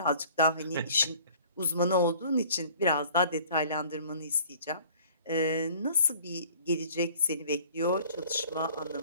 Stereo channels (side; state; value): both; inverted; correlation -0.51